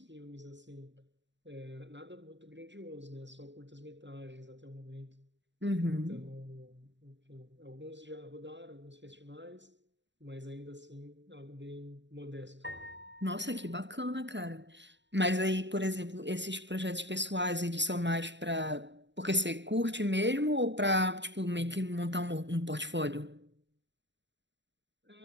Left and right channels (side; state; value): left; late; 0.52 ms